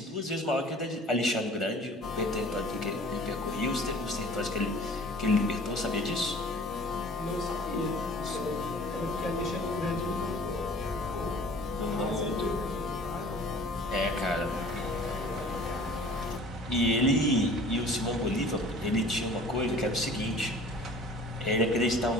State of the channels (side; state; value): both; normal; correlation 0.47